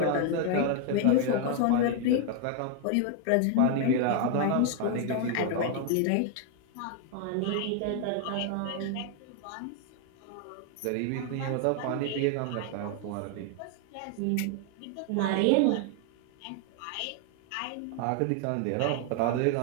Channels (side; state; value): both; different; correlation 0.01